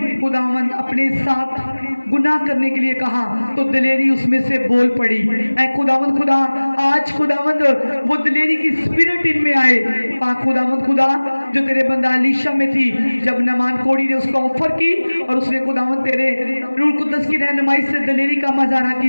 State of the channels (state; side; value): inverted; both; correlation -1.00